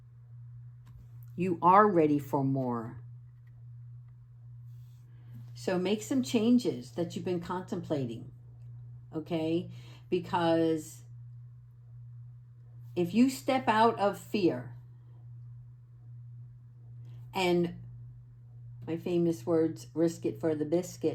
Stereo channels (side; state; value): both; identical; correlation 1.00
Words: You are ready for more. So make some changes that you've been contemplating, okay? Because if you step out of fear, and my famous words, risk it for the